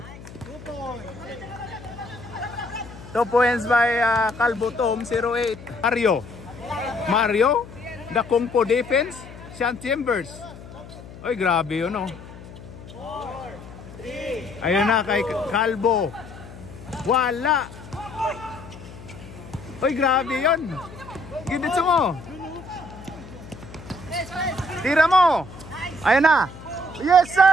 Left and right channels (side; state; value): left; noise; hum, 16 dB below the sound